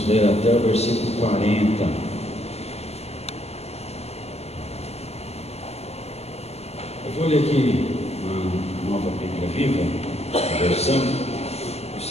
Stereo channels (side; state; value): right; late; 0.30 ms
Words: ver até o versículo 40. Eu vou ler aqui uma nova Bíblia Viva, a versão,